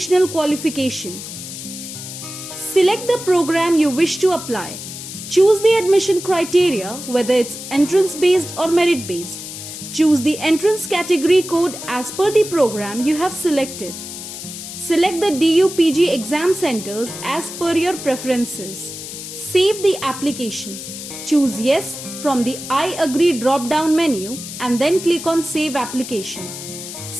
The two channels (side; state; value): left; noise; hiss, 10 dB below the sound